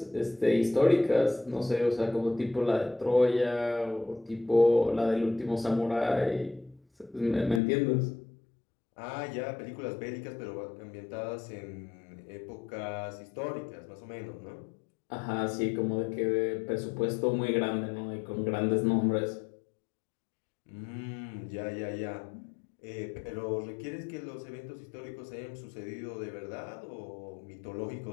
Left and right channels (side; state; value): right; drops out; at 7.6 s